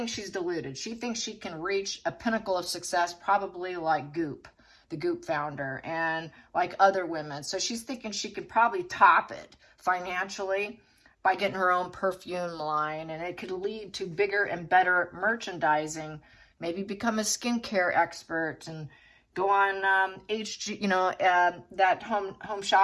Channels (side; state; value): both; identical; correlation 1.00